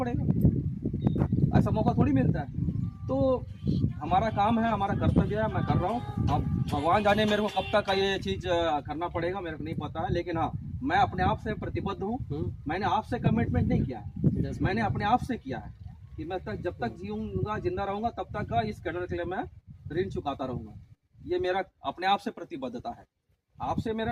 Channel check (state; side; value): identical; both; correlation 1.00